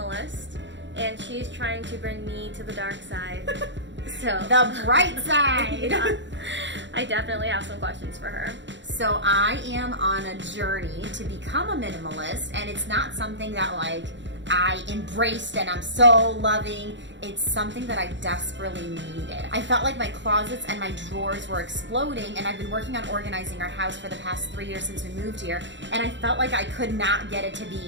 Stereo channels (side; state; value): left; late; 0.53 ms